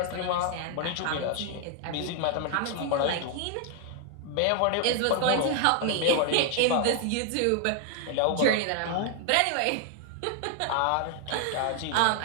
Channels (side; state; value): both; different; correlation 0.00